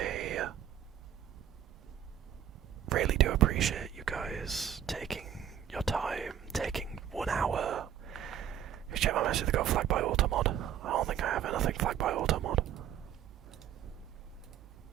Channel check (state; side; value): quieter; left; 9.9 dB